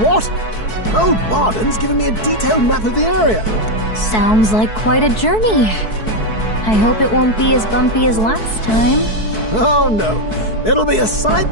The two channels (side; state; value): right; late; 4.6 ms